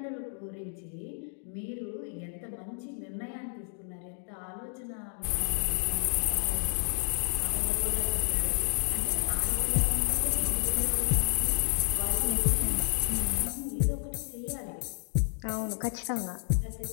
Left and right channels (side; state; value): right; silent; 57 dB below the other